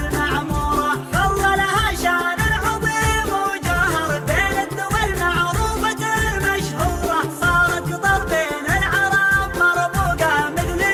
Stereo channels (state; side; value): identical; both; correlation 1.00